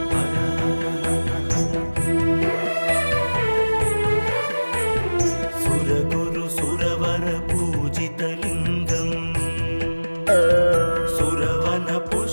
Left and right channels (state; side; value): inverted; both; correlation -1.00